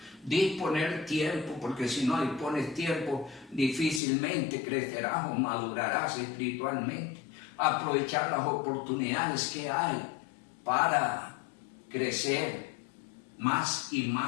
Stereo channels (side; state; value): right; drops out; at 4.0 s